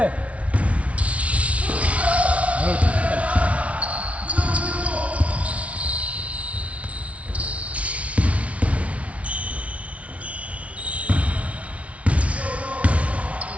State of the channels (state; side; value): late; left; 0.064 ms